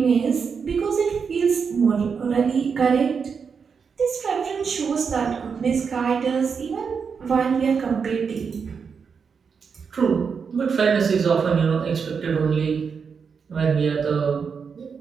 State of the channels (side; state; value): left; quieter; 6.0 dB